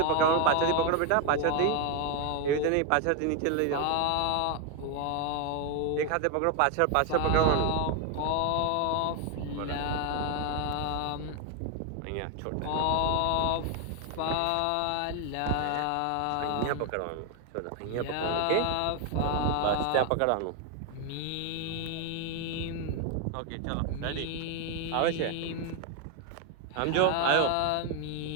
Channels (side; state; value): both; different; correlation 0.01